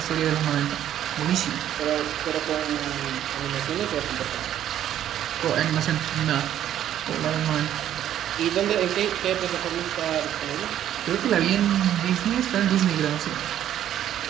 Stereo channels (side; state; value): left; quieter; 11.1 dB